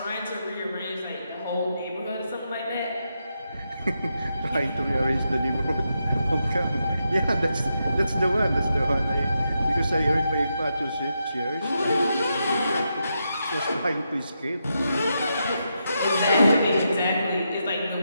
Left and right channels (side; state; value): both; inverted; correlation -0.84